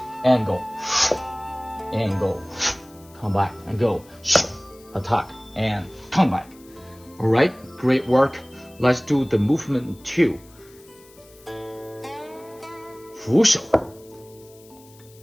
and go come back and go attack and come back. All right, great work. Let's do the movement 2. 扶手.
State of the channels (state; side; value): noise; left; hiss, 26 dB below the sound